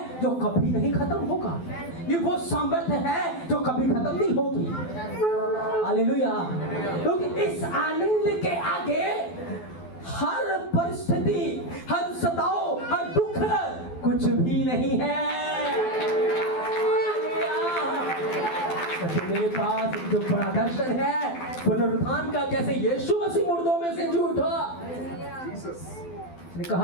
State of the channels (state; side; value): late; right; 12 ms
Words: जो कभी नहीं खत्म होगा, ये वो सामर्थ्य है जो कभी खत्म नहीं होगी। हालेलुया। क्योंकि इस आनंद के आगे हर परिस्थिति, हर सताओ, हर दुख कुछ भी नहीं है। मेरे पास जो बड़ा दर्शन है पुनरुत्थान का, कैसे यीशु मसीह मुर्दों में से जी उठा। उसने